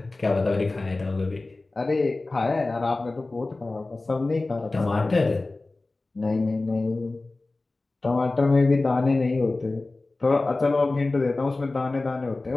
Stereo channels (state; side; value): quieter; right; 3.2 dB